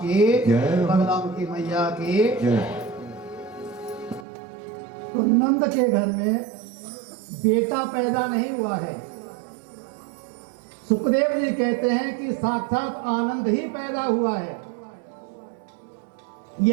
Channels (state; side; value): drops out; left; at 4.2 s